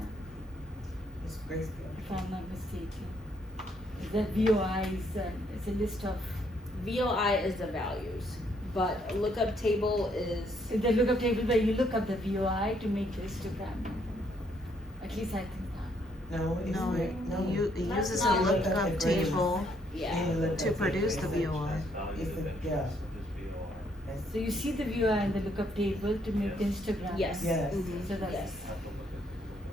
It's grayscale. if I'm not mistaken. The VOI is it's a list of, VOI is the values, but lookup table is, the lookup table where you look up the VOI to make the histogram. At least I think that. No, it's No, no. it That's uses not a lookup lookup table. table yeah. And you look to at the produce the grayscale. VOI. It's the, yeah. So you see the VOI in the lookup table to make the histogram. Yes. Yes. So that's. Yes.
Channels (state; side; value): normal; both; correlation 0.69